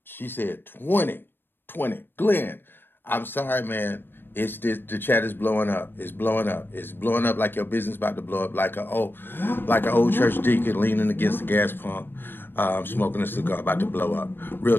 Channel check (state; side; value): late; right; 0.098 ms